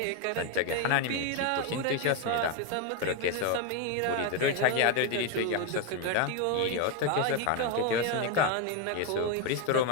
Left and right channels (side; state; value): both; different; correlation 0.02